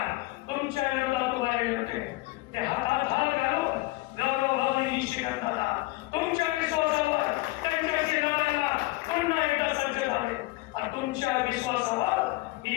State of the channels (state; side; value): quieter; right; 20.7 dB